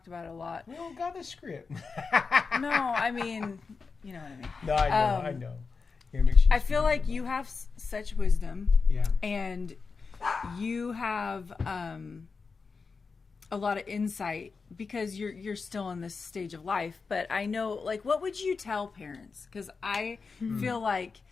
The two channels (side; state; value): right; quieter; 4.8 dB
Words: about it a lot. We don't got a script. No, I mean, you know what I mean. No, I know. I feel like you have such wisdom, and you have a lot of insight because you're still in this stage of life. But I know, like, what would you tell parents? Because I feel like